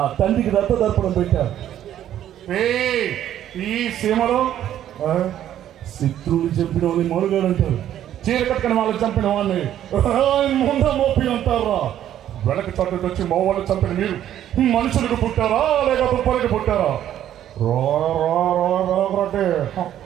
తండ్రికి రక్త దర్పణం పెట్టారు. ఈ సీమలో శత్రువులు చంపిన వాళ్ళని మనుగాడు అంటారు, చీర కట్టుకుని వాళ్ళు చంపిన వాళ్ళని ముందు మోపి అంటారా? వెనక చట్టుకు వచ్చి మా వాళ్ళు చంపిన మీరు మనుషులకు పుట్టారా లేక తుప్పలకి పుట్టారా?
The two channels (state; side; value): quieter; left; 11.3 dB